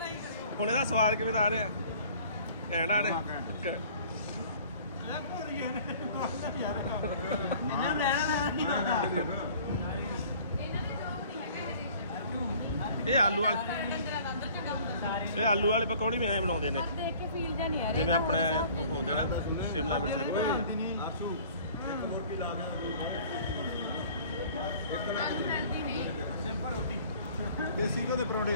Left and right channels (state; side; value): inverted; both; correlation -0.50